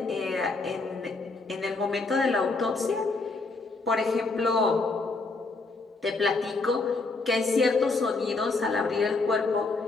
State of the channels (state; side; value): quieter; right; 3.6 dB